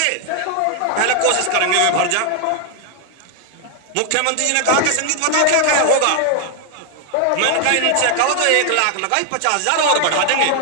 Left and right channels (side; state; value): both; different; correlation 0.00